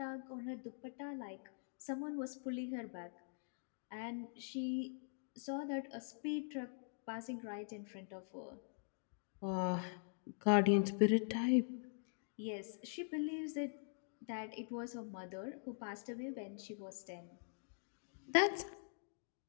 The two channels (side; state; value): right; silent; digital silence